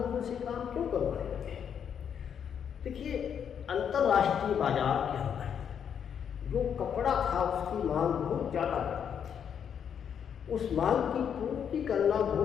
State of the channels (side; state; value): right; quieter; 8.0 dB